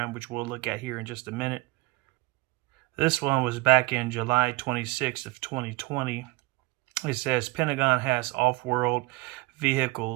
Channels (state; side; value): quieter; left; 22.6 dB